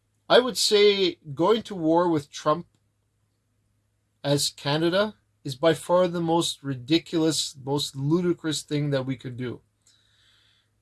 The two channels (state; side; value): identical; both; correlation 1.00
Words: I would say going to war with Trump as Canada is by far the most ridiculous, most ludicrous thing that we could do.